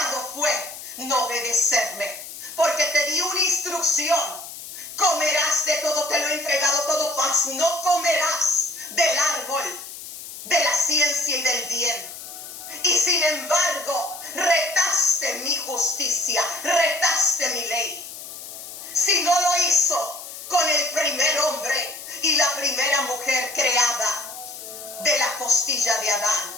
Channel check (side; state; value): left; noise; hiss, 12 dB below the sound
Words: fue no obedecerme. Porque te di una instrucción. Comerás de todo, te lo he entregado todo, mas no comerás del árbol de la ciencia y del bien. Y sin embargo, retaste mi justicia, retaste mi ley. Si no lo hizo con el primer hombre y la primera mujer creada de la costilla de